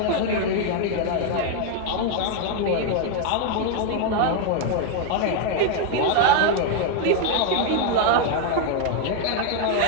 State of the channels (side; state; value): both; different; correlation 0.00